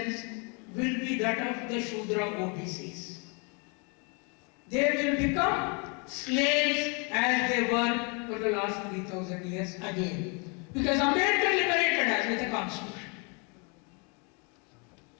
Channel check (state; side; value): quieter; right; 33.8 dB